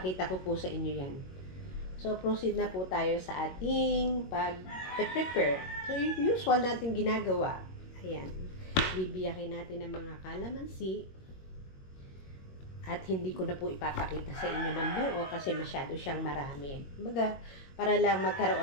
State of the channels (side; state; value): right; late; 21 ms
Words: ko po sa inyo yan. So, proceed na po tayo sa ating pag-prepare. So, yung usual natin ginagawa. Ayan. bibiyakin natin ng mga kalamansi. At hindi ko na po ipapakita sa inyo ng buo kasi masyado siyang marami. Kumbaga, para lang